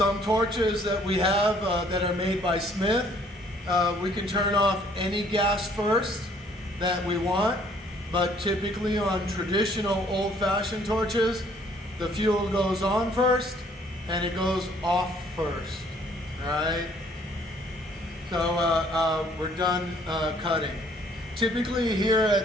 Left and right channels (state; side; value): normal; both; correlation 0.61